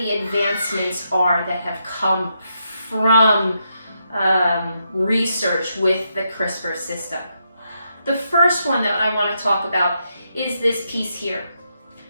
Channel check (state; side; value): inverted; both; correlation -0.80